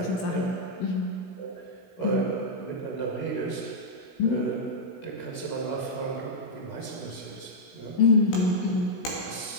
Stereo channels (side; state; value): right; late; 16 ms